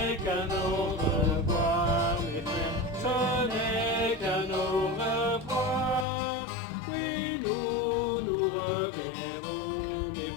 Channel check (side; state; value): right; drops out; at 6.1 s